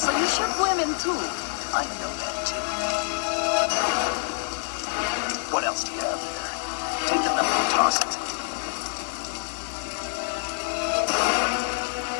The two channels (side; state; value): right; silent; 60 dB below the other